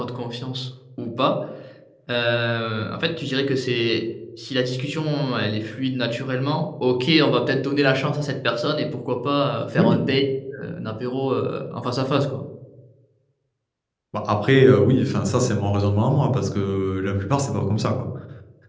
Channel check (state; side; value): identical; both; correlation 1.00